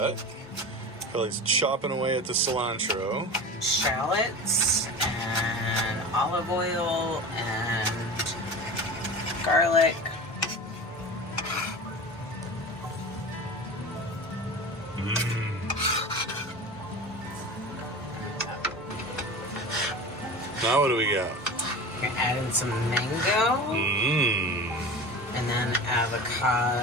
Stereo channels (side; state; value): both; normal; correlation 0.32